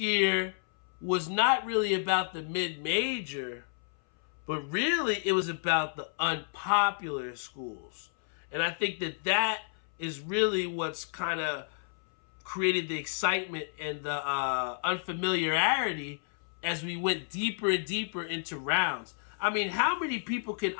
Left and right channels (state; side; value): silent; right; 57 dB below the other